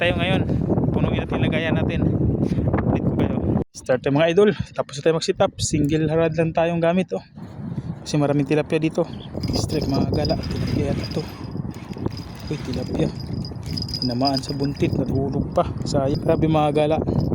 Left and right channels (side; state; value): both; identical; correlation 1.00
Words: ngayon. Punuin natin lagayan natin. Start tayo mga idol, tapos tayo mag sit up. Single harad lang tayong gamit oh. Kasi maraming tilapia dito. Strike mga gala, tilapia yata to. Uy, tilapia tinamaan sa buntit, natulog pa, sayang. Grabe mga gala,